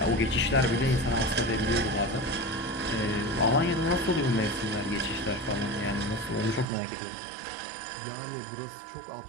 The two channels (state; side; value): drops out; left; at 6.7 s